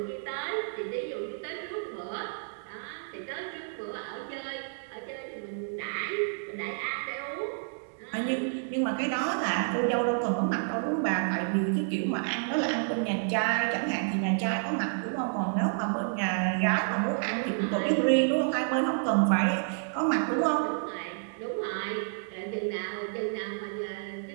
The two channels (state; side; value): silent; left; digital silence